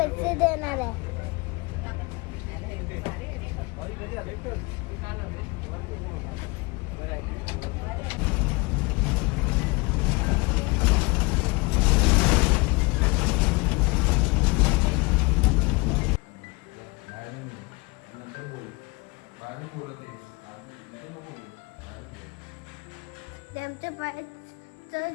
देणार आहे. ते आमच्या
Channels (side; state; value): right; quieter; 26.3 dB